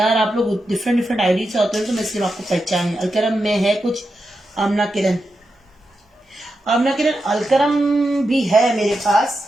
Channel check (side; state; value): both; normal; correlation 0.88